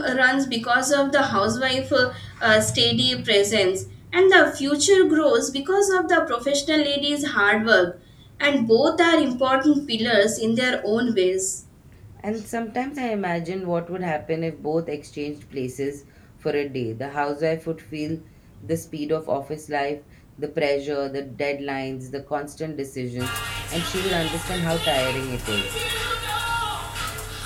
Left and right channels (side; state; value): both; identical; correlation 1.00